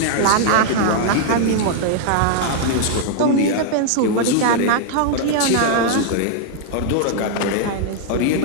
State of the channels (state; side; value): different; both; correlation 0.00